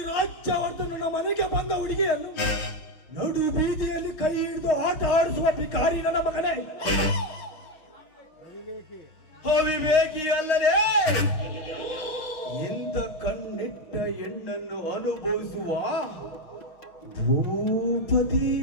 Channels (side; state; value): right; late; 6.4 ms